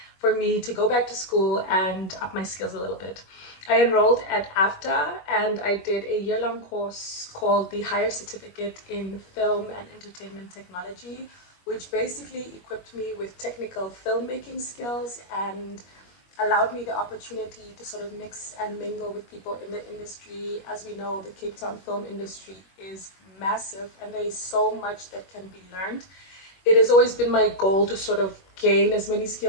for me to go back to school and up my skills a little bit. I enrolled at AFTA and I did a year-long course called the Higher Certificate in Film and Entertainment Technology, which basically equipped me with technical filmmaking skills and allowed me the opportunity to sort of mix and mingle with people in the industry. As we know, the Cape Town film industry is massive and there is so much that can be learned. It has always been my goal to sort of gain as many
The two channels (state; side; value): late; right; 21 ms